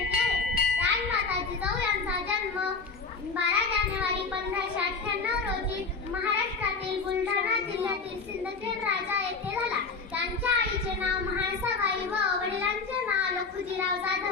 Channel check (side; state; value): right; quieter; 4.6 dB